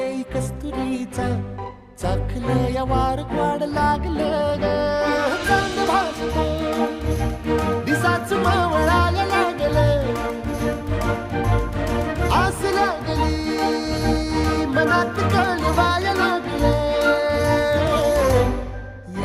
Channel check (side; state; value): both; identical; correlation 1.00